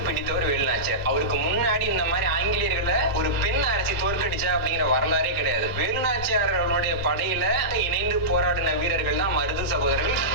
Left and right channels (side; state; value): both; normal; correlation -0.17